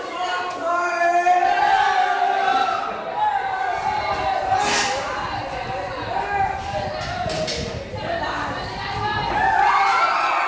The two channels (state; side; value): identical; both; correlation 1.00